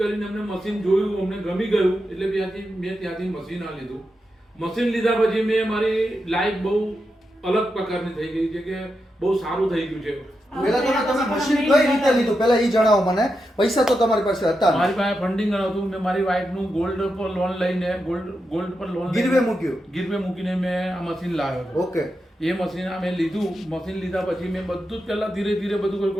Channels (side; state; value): both; normal; correlation 0.87